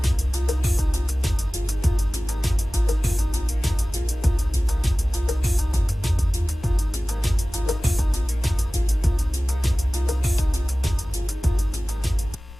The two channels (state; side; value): normal; both; correlation 0.97